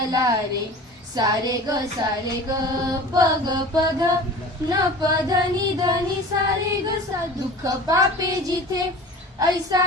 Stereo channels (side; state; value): both; normal; correlation 0.39